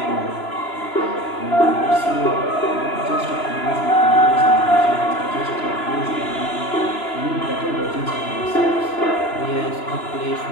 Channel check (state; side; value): late; right; 2.9 ms